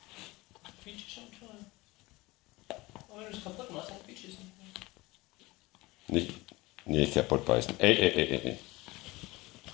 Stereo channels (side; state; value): right; quieter; 21.4 dB